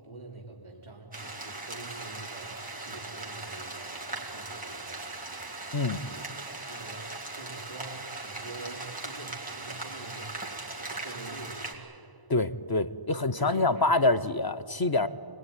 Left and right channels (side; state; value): right; late; 1.0 ms